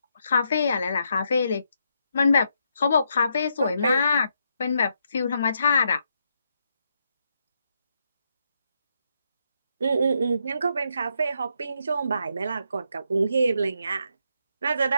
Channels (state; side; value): inverted; both; correlation -0.79